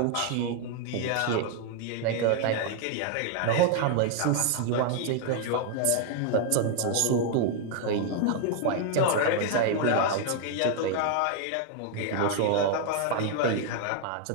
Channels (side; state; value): both; different; correlation 0.00